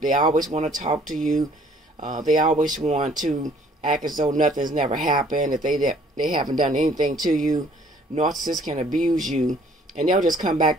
They always want to talk to you. They always want to act as though nothing's never happened, that they haven't done anything to you. Narcissists can abuse you, and they'll just come back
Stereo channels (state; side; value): normal; both; correlation 0.59